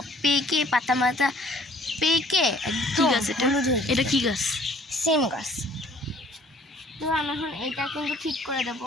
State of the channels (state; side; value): normal; both; correlation 0.57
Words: পেকে পাতা মাথা পেকে কি গাছ এটা কি গাছ? সিম গাছ। তো আমি এখন এটা কিন্তু ঠিক করে দেবো,